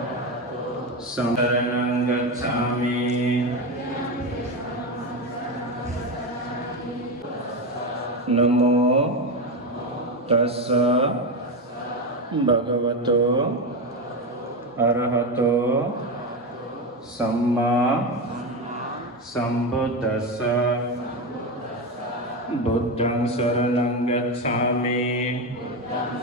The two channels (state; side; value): normal; both; correlation 0.15